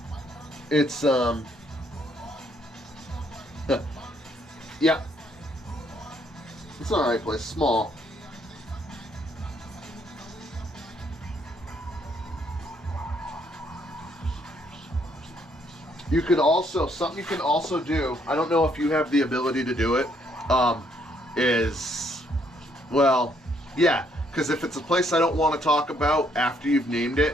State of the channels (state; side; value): normal; both; correlation 0.69